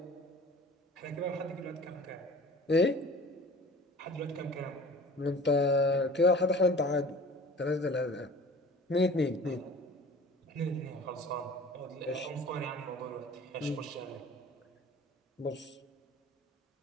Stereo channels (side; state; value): both; normal; correlation 0.44